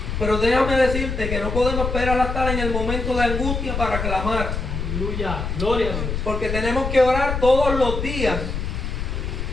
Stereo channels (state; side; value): noise; left; rumble, 3 dB below the sound